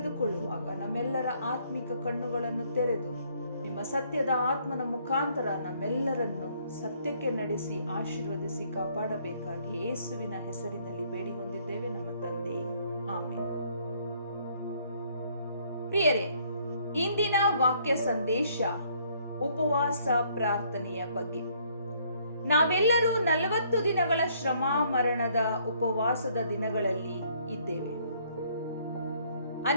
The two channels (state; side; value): inverted; both; correlation -0.65